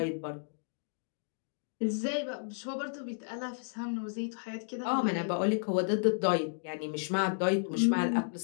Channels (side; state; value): right; silent; digital silence